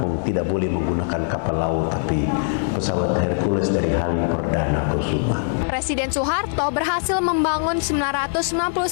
tidak boleh menggunakan kapal laut tapi pesawat Hercules dari Halim Perdana Kusuma. Presiden Soeharto berhasil membangun 999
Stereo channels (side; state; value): right; silent; digital silence